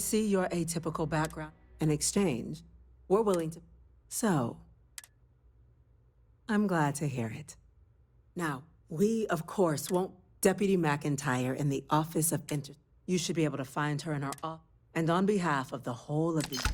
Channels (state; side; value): identical; both; correlation 1.00